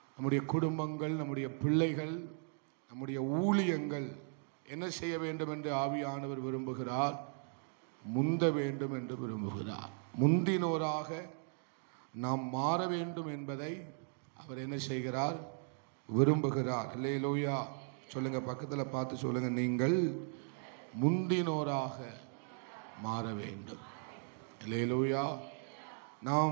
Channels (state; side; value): silent; left; 53 dB below the other